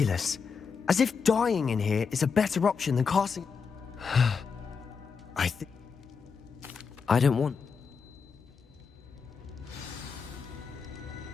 As if dying in here is a better option than casting... I don't want...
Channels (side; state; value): right; quieter; 5.7 dB